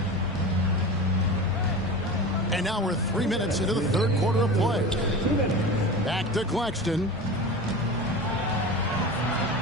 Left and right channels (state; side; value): normal; both; correlation 0.31